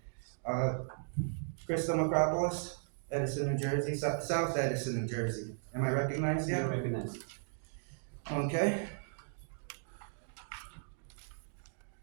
Crystal Macropolis, Edison, New Jersey, South Edison, New Jersey. Am I recognized yet? You're recognized. Okay.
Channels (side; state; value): left; silent; digital silence